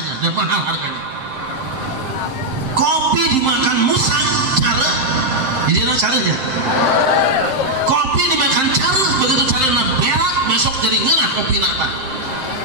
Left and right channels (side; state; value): left; late; 7.6 ms